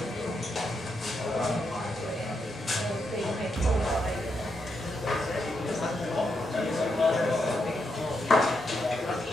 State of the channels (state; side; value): normal; both; correlation 0.82